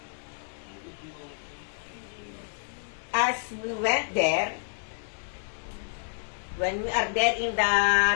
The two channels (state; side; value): silent; right; digital silence